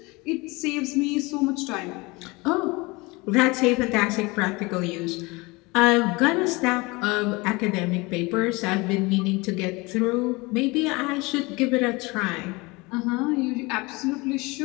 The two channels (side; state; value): right; quieter; 24.6 dB